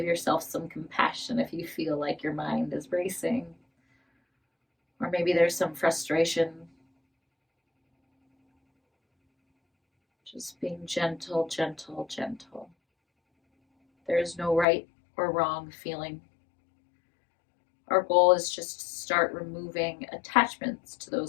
yourself some compassion if you feel like your mind is racing, or maybe there's some frustration. Just being gentle, gentle, gentle. There's no right or wrong feeling. Our goal is just to start removing attachments to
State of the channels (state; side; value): drops out; right; at 14.7 s